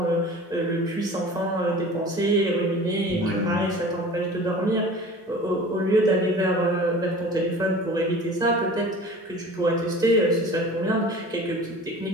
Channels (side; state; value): both; normal; correlation 0.41